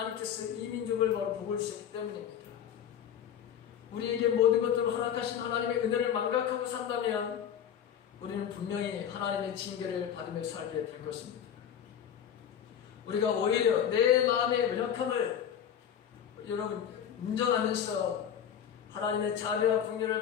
이 민족을 바로 복을 주셨기 때문입니다. 우리에게 모든 것들을 허락하신 하나님의 은혜를 망각하고 산다면 우리는 분명히 하나님의 징계를 받으며 살게 될 것입니다. 우리가 오히려 내 마음의 연약함을 여러분 인정하면서 하나님의 자비와 긍휼을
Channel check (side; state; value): right; quieter; 9.1 dB